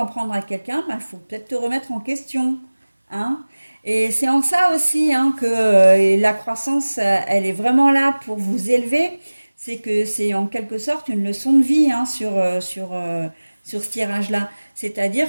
prendre à quelqu'un, il faut peut-être te remettre en question, hein. Et c'est en ça aussi, hein, que la croissance, elle est vraiment là pour vous élever. C'est que c'est en quelque sorte une leçon de vie, hein, sur ce tirage-là.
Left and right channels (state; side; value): inverted; both; correlation -1.00